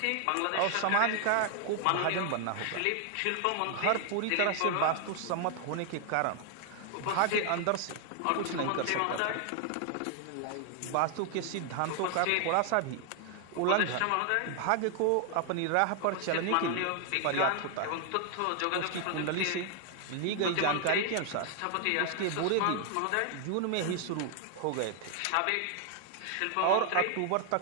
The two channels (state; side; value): different; both; correlation 0.00